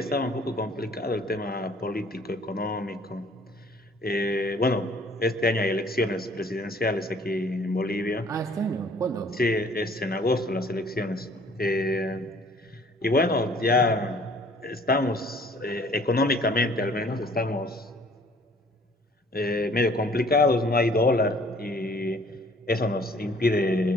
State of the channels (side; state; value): both; normal; correlation 0.56